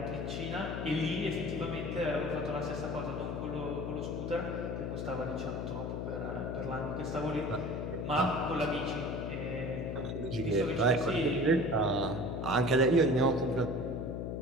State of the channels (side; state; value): left; noise; hum, 3 dB below the sound